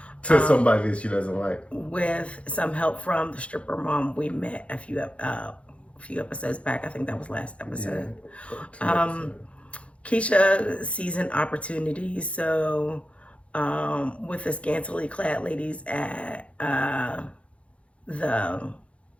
To somebody that she doesn't like. With some help from the stripper mom we met a few episodes back. I think that was last episode. Yeah. Keisha sees an opportunity. So with the scantily clad ladies at the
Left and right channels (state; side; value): late; right; 0.062 ms